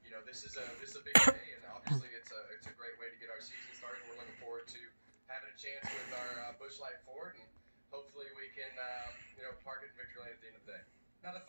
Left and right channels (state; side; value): inverted; both; correlation -1.00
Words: this is a big day, and obviously it's a great way to get our season started. We're looking forward to having a chance with our Busch Light Ford, and hopefully we can park it in victory lane at the end of the day. Now, the